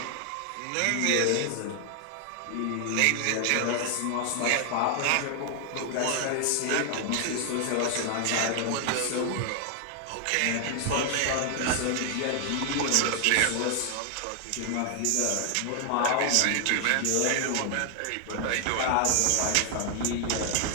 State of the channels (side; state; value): both; different; correlation 0.00